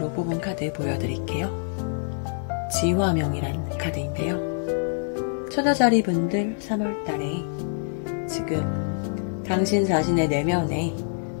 뽑은 카드 보여드릴게요. 지화명이란 카드인데요. 처녀자리 분들 3월달에 지금 당신 자신의 내면에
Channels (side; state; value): right; silent; digital silence